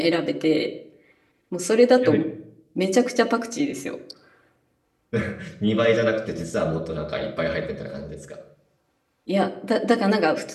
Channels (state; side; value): identical; both; correlation 1.00